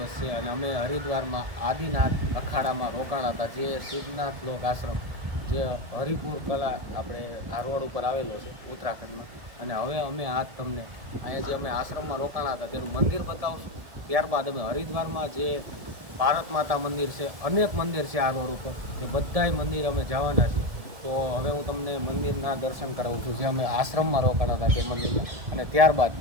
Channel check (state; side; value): late; left; 1.7 ms